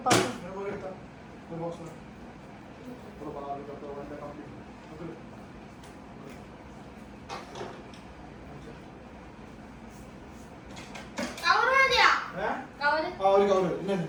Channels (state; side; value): identical; both; correlation 1.00